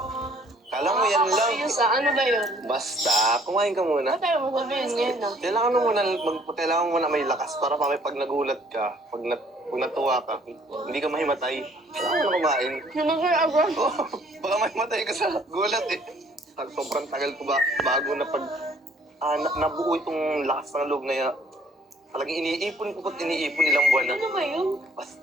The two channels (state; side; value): normal; both; correlation 0.60